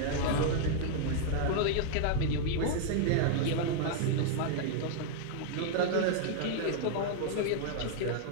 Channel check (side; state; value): both; different; correlation -0.01